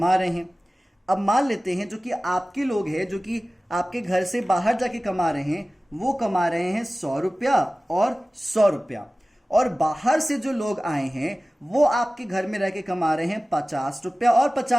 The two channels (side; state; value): both; normal; correlation 0.97